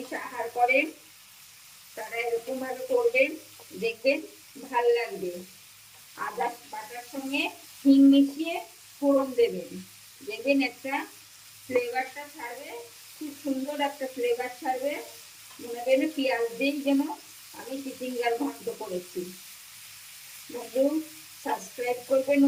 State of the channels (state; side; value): identical; both; correlation 1.00